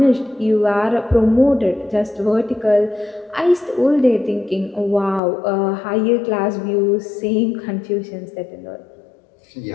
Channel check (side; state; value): right; drops out; at 5.2 s